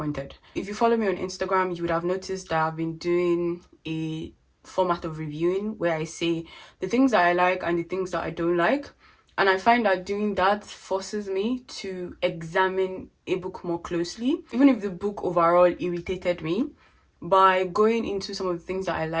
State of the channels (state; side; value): identical; both; correlation 1.00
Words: If you follow me on Instagram, you would have noticed that I've been doing a format of reviewing where I say the things that I like and the things that I don't like. And I find that doing that forces me to examine a book more closely. Even if the book overall irritated me, by going into some of the things that I